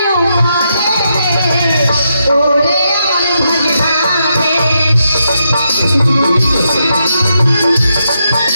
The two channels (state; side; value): inverted; both; correlation -0.81